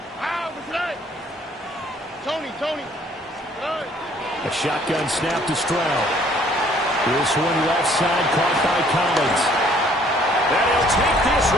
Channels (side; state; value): both; normal; correlation 0.60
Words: Tony. A shotgun snap to Stroud. This one left side caught by Collins. And he'll take this